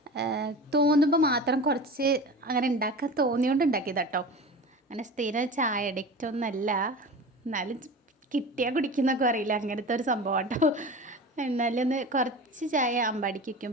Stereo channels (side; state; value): both; normal; correlation 0.33